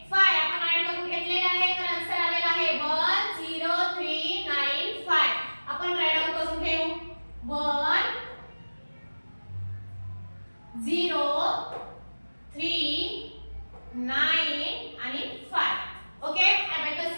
5 आपण ऍड करून घेतलेले आहे. तर आन्सर आलेला आहे 10395. आपण राईट डाउन करून घेऊ. 1 0 3 9 आणि 5. ओके, अबॅकस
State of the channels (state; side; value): inverted; both; correlation -1.00